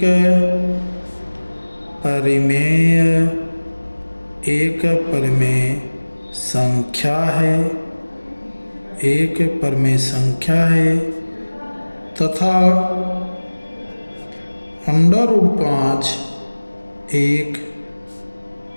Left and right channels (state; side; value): inverted; both; correlation -1.00